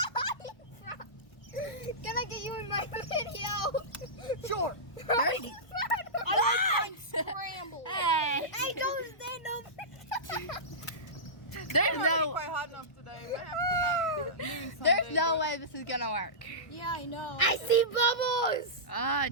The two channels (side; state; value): right; late; 1.1 ms